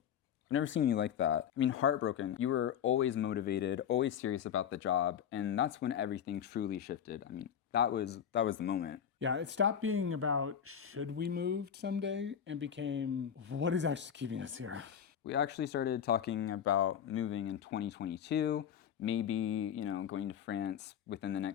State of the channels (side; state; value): right; quieter; 8.7 dB